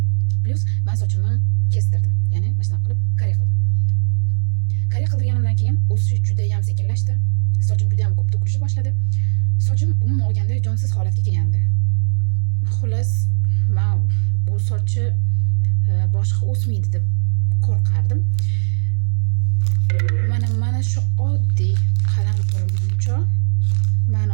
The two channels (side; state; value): left; silent; 64 dB below the other